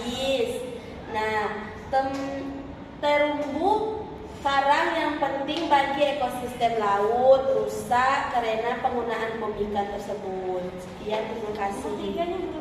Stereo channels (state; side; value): identical; both; correlation 1.00